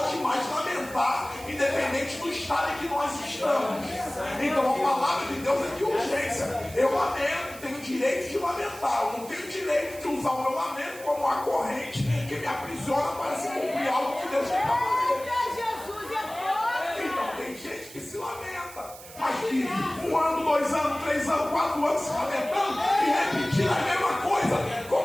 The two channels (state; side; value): noise; right; hiss, 17 dB below the sound